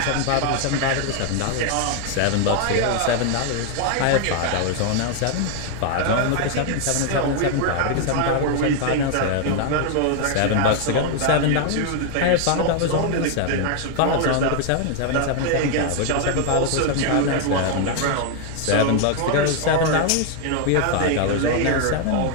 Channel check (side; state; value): both; different; correlation 0.00